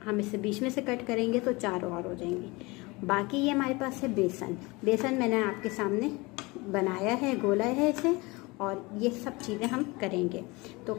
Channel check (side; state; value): right; quieter; 24.4 dB